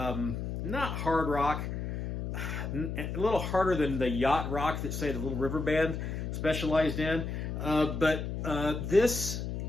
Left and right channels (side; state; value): left; noise; hum, 4 dB below the sound